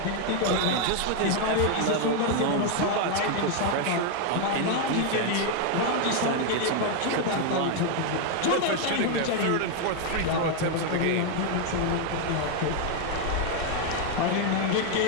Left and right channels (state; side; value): different; both; correlation 0.01